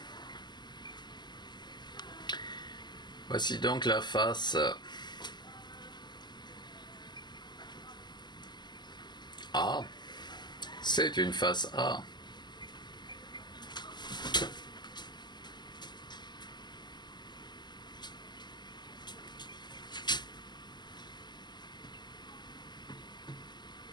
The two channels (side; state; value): right; late; 0.21 ms